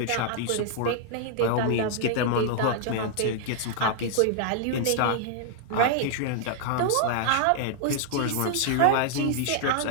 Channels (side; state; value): both; different; correlation -0.01